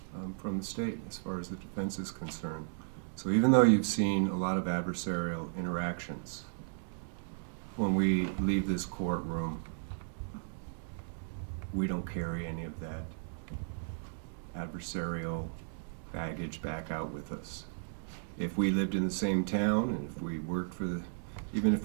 from the state as far as the defense is concerned. So even though you've seen a lot of adversarial interactions, when we leave this courtroom, we don't carry any of that adversarial baggage back out with us. If we lived in the same town and if we worked for even if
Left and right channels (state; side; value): silent; left; digital silence